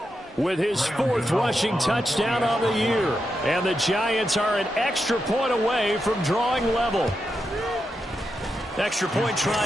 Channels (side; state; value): both; normal; correlation 0.86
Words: with his 4th rushing touchdown on the year. And the Giants are an extra point away from drawing level. Extra point